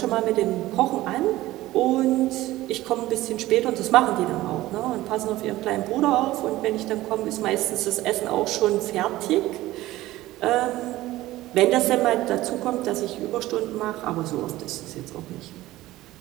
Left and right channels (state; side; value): quieter; left; 16.7 dB